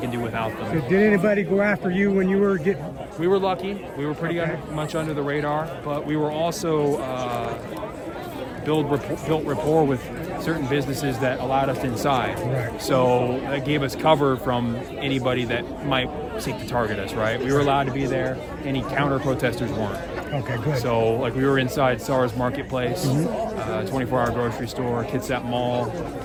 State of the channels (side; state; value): both; identical; correlation 1.00